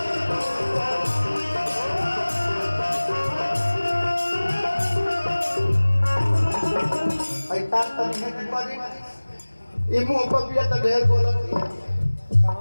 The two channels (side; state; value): both; inverted; correlation -1.00